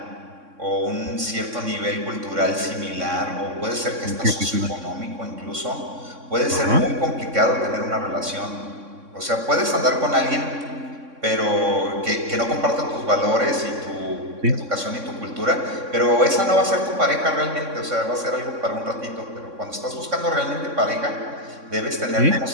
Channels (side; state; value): left; late; 3.6 ms